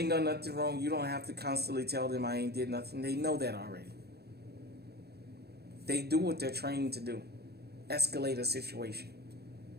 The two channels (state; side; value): late; left; 0.47 ms